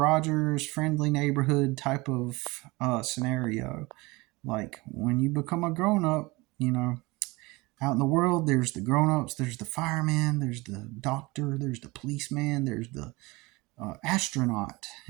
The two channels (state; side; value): quieter; left; 23.4 dB